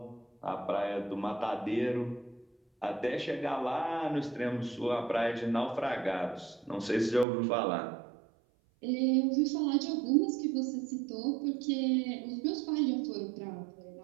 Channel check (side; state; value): left; drops out; at 7.2 s